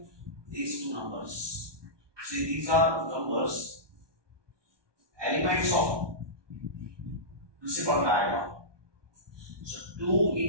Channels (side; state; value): left; late; 1.2 ms